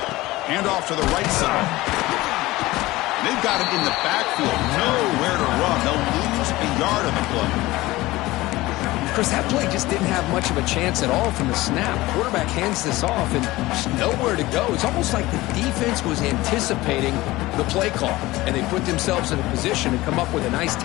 Hand off to the right side. They've got him in the backfield. Nowhere to run. They'll lose a yard on the play. Chris, that play just didn't have much of a chance at all from the snap. Quarterback hands this off and just nowhere to go. It's almost like the defense was anticipating the play call, and they put themselves in a position to come up with a nice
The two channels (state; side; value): quieter; right; 18.9 dB